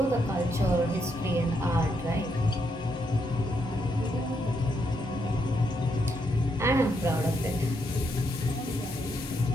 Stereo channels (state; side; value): normal; both; correlation 0.78